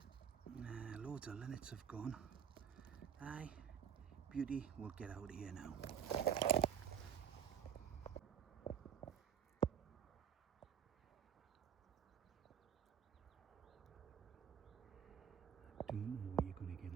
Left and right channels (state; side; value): quieter; left; 8.7 dB